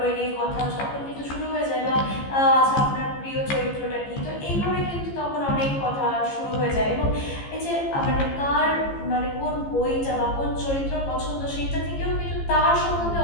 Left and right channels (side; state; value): right; late; 15 ms